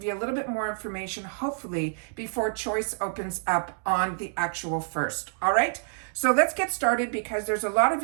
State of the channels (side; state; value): left; silent; digital silence